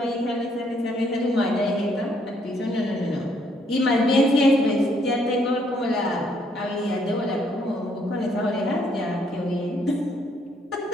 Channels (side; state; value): both; normal; correlation 0.69